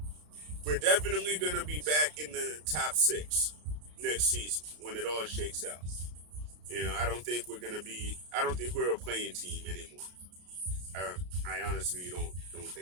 we're definitely gonna be back in the top six next season when it all shakes out. You know, I don't think we're gonna be. I don't think we're a playing team anymore. I, I honestly don't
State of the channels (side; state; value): left; late; 33 ms